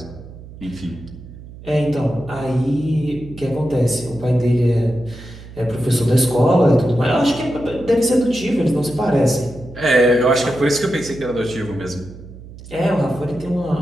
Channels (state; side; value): noise; right; hum, 16 dB below the sound